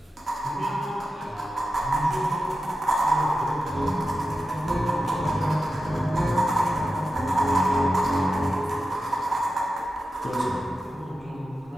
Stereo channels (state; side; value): normal; both; correlation 0.91